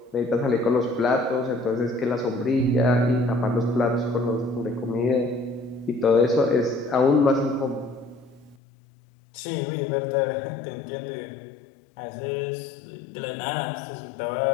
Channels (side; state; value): right; drops out; at 8.6 s